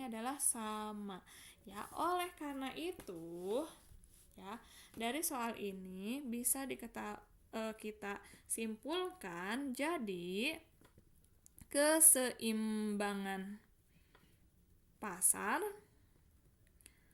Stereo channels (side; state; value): both; identical; correlation 1.00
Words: adalah sama. Ya, oleh karena itu ya, dari soal ini bisa kita simpulkan jadi keseimbangan pasar